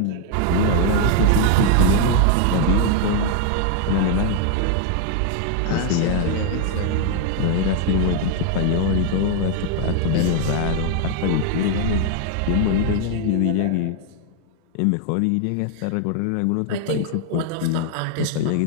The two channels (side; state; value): both; different; correlation 0.00